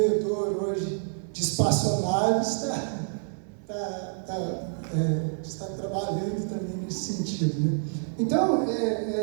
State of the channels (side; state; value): left; silent; 59 dB below the other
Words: hoje de espaçonaves está trabalhando também nesse sentido, né? Então,